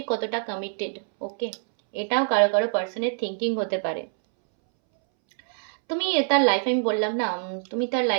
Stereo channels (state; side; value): silent; left; 62 dB below the other